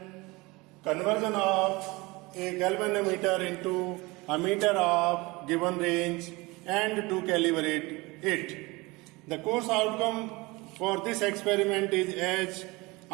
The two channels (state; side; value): quieter; left; 23.5 dB